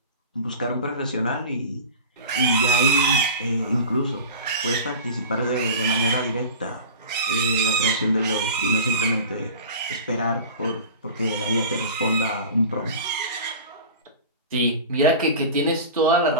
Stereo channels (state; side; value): inverted; both; correlation -0.35